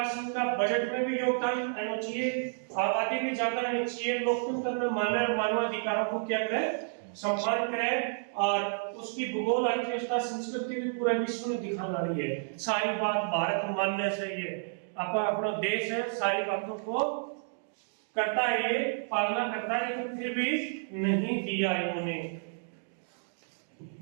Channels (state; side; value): silent; left; digital silence